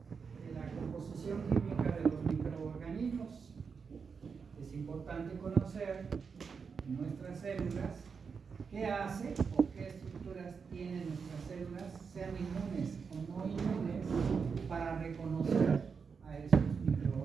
la composición química de los microorganismos. Es importante conocer nuestras células, qué hace o qué estructuras tienen nuestras células, sean inmunes o no inmunes, para reconocer a esos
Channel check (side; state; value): left; quieter; 5.7 dB